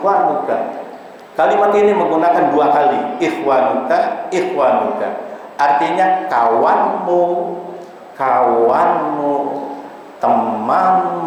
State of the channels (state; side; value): identical; both; correlation 1.00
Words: Kalimat ini menggunakan dua kali, ikhwanuka. Artinya kawanmu,